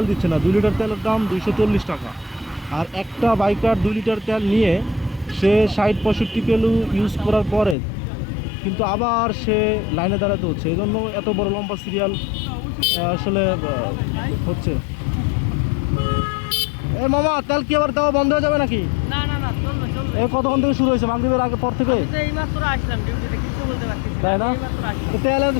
দিচ্ছে না। 2 লিটার তেলের দাম 240 টাকা, আর একটা বাইকার 2 লিটার তেল নিয়ে সে 60-65 কিলো ইউজ করার পরে কিন্তু আবার সে লাইনে দাঁড়াতে হচ্ছে। এই জন্য এত বড় লম্বা সিরিয়াল আসলে হচ্ছে। এ মামা, তেল কি আবার দেওয়া বন্ধ হয়ে যাবে নাকি? না না না, চলবে চলবে। এই কতক্ষণ থেকে শুরু হয়েছে? মাগরিবের আগে পর থেকে? এইমাত্র আসলাম ডিউটিতে, কিছু বলতে পারছি না। তাই না? এইমাত্র আসলাম। তো তেলের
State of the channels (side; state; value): right; drops out; at 7.8 s